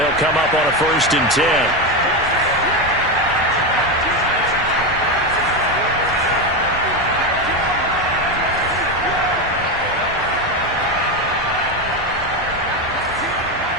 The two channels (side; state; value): both; normal; correlation 0.13